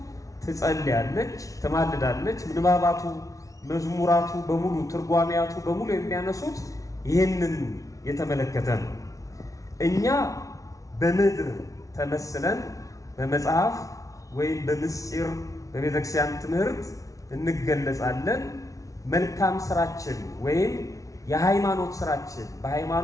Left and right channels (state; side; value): late; right; 0.17 ms